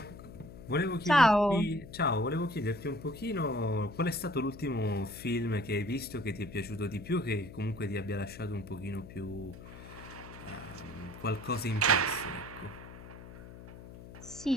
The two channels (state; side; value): noise; left; hum, 15 dB below the sound